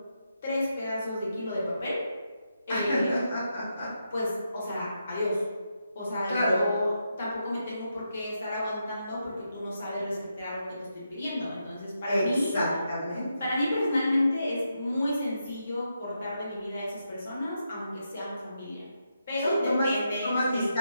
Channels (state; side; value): inverted; both; correlation -0.84